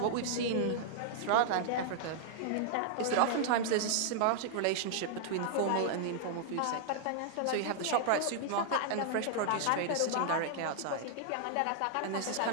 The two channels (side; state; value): both; different; correlation -0.01